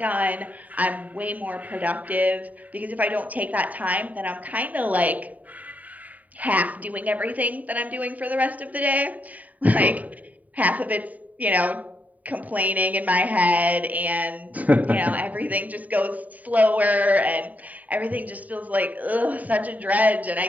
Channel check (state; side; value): late; left; 0.073 ms